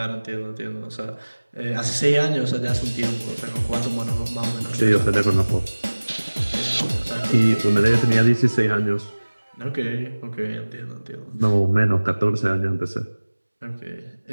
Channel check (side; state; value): both; inverted; correlation -1.00